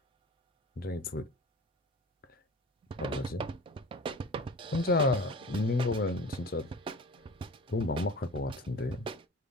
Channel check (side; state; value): both; normal; correlation 0.38